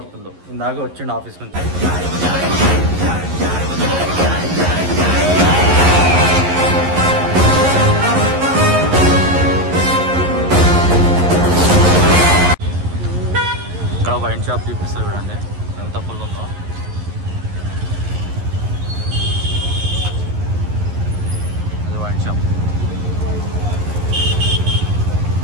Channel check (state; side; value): late; left; 11 ms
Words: ఇందాక వచ్చిండు ఆఫీస్ నుంచి. ఇక్కడ వైన్ షాప్ చూపిస్తుంది చూడండి ఎంత ఫుల్ ఉందో. అది wine shop.